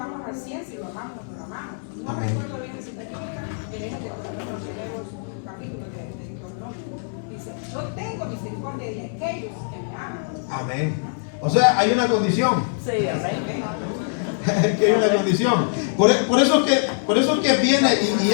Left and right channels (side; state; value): right; silent; 63 dB below the other